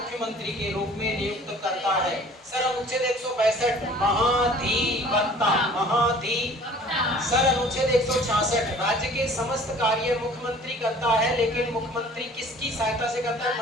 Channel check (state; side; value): normal; both; correlation 0.50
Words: के रूप में नियुक्त करता है। सर, अनुच्छेद 162 महाधिवक्ता। सर, अनुच्छेद 166 राज्य के समस्त कार्य मुख्यमंत्री करता है, लेकिन मुख्यमंत्री किसकी सहायता से करता है?